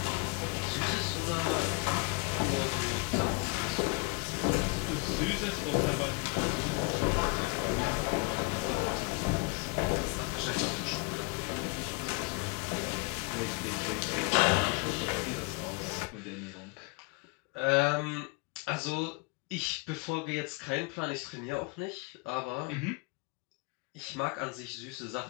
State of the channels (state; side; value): quieter; right; 29.6 dB